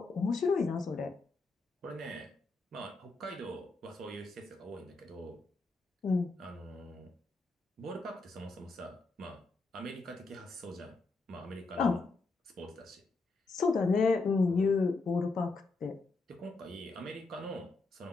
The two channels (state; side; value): quieter; right; 3.6 dB